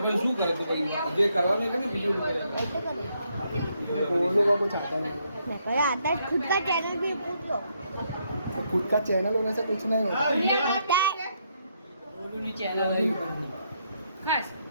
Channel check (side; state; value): both; inverted; correlation -0.75